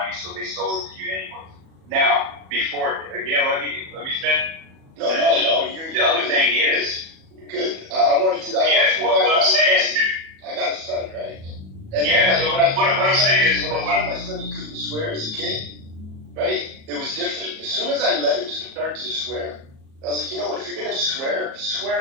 so they sold it to you anyway. Now, before again, let me finish. No. The other thing is. Good. I wanted to. What I'm saying is, I got a son, right? And what I'm saying is, when I told my son he couldn't swear as a kid, right? It was different. As soon as I let him start to swear, I was like, you know what? If you're gonna swear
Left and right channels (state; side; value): late; left; 37 ms